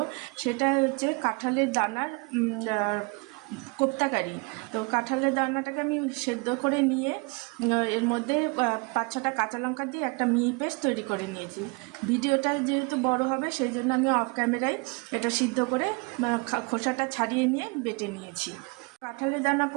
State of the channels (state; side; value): quieter; left; 31.4 dB